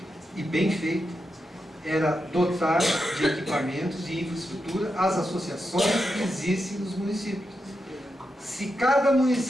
era dotar de equipamentos e infraestrutura as associações que existem nos municípios. Se cada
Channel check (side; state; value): both; normal; correlation 0.87